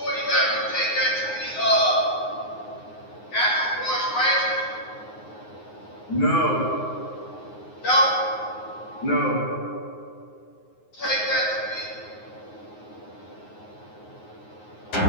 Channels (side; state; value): right; late; 9.6 ms